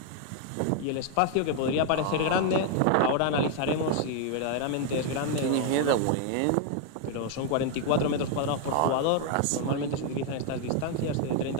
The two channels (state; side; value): different; both; correlation 0.00